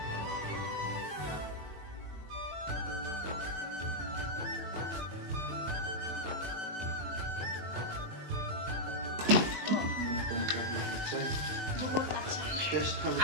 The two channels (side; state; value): left; late; 20 ms